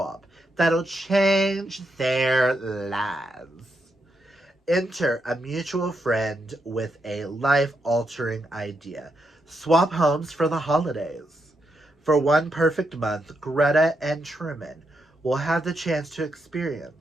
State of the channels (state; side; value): normal; both; correlation 0.82